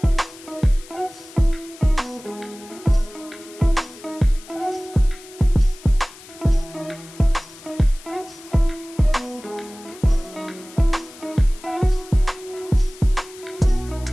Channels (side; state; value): left; noise; hiss, 20 dB below the sound